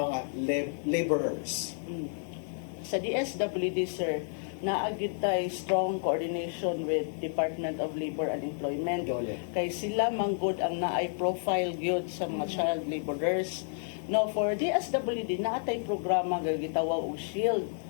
laborers. Sa DSWD, sir, naagid tay strong coordination with Department of Labor and Employment. Dole. Kay sila manggod ang naay profile gyud sa mga child laborers. No, for DSWD naatay programa nga gitawag og SHIELD.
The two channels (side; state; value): right; silent; digital silence